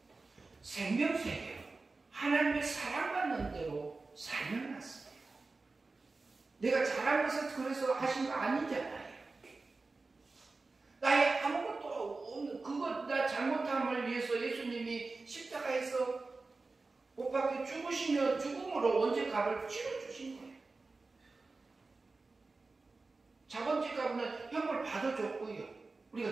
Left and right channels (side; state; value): left; quieter; 3.7 dB